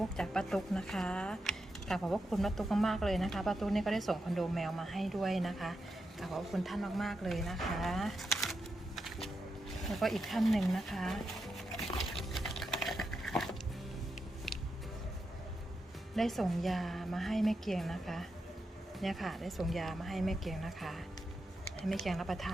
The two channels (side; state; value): both; normal; correlation 0.86